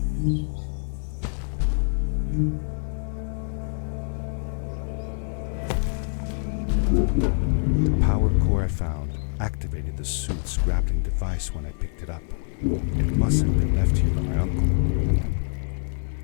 The power core I found activated the suit's grappling device when I picked it up. It must have been left here by my uncle.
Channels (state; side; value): silent; right; digital silence